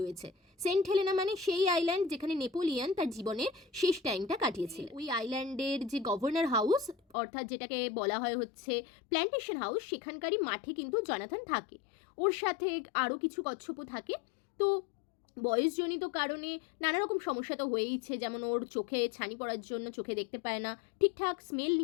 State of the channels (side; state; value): right; drops out; at 7.0 s